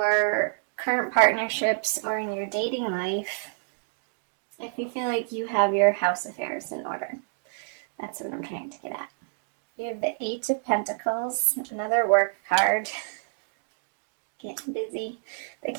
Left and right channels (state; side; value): silent; left; digital silence